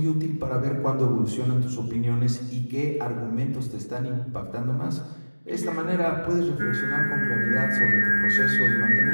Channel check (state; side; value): inverted; both; correlation -1.00